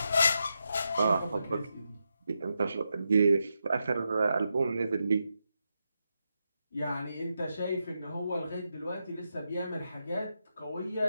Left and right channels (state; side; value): inverted; both; correlation -0.86